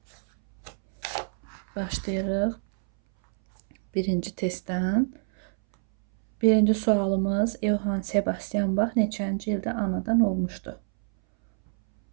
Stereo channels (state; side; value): silent; left; 61 dB below the other